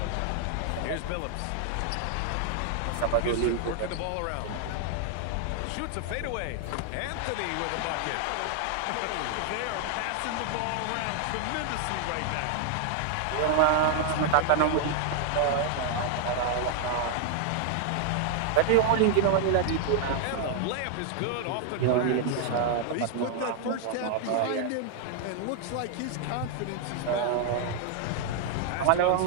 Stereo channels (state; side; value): different; both; correlation 0.00